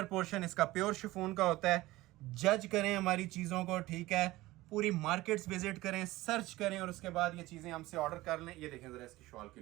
पोर्शन इसका प्योर शिफॉन का होता है। जज करें हमारी चीज़ों को, ठीक है, पूरी मार्केट्स विजिट करें, सर्च करें, और उसके बाद ये चीज़ें हमसे ऑर्डर कर लें। ये देखें जरा इसकी शॉल की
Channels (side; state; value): left; quieter; 18.3 dB